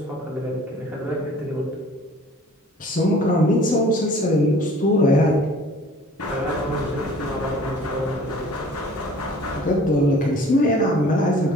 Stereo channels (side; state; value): both; normal; correlation 0.49